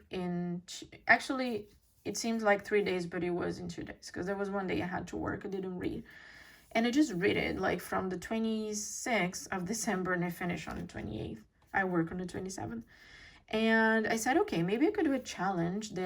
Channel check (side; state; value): both; identical; correlation 1.00